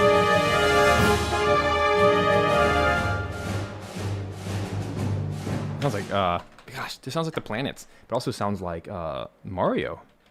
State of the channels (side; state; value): both; identical; correlation 1.00